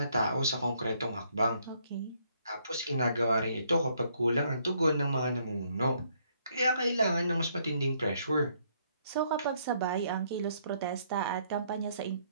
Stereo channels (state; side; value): inverted; both; correlation -0.70